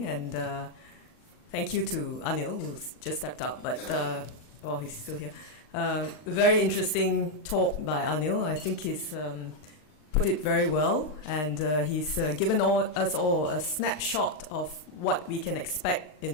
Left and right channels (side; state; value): right; late; 39 ms